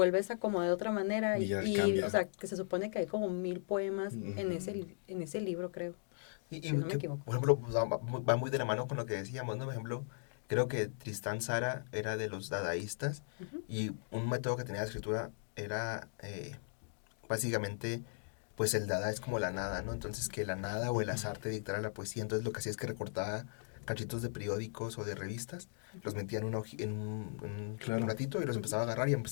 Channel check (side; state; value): right; silent; digital silence